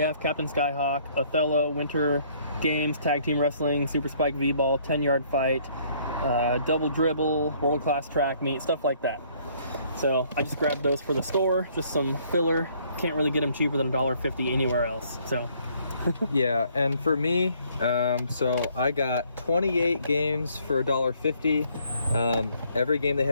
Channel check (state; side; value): inverted; both; correlation -0.63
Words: Captain Skyhawk, Othello, Winter Games, Tag Team Wrestling, Super Spike V-Ball, 10-Yard Fight, Double Dribble, World Class Track Meet, stuff like that. So I just grabbed those for the store, just some filler. Can't really get them cheaper than $1.50 anywhere else. So yeah, and for me, so I got 28 games for $1.50. Every game they